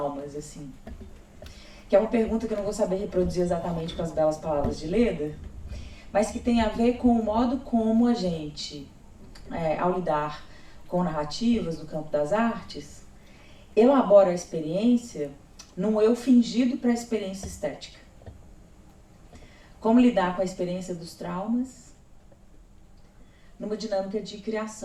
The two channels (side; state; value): both; identical; correlation 1.00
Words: assim. Que é uma pergunta que eu não vou saber reproduzir exatamente com as belas palavras de Leda, mas que tem a ver com o modo como a gente, ao lidar com narrativas no campo das artes, elabora a experiência num eu fingido para a experiência estética. Como lidar com a experiência dos traumas numa dinâmica de